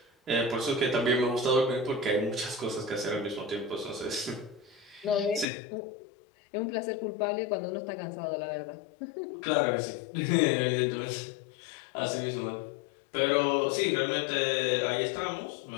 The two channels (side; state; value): right; drops out; at 5.5 s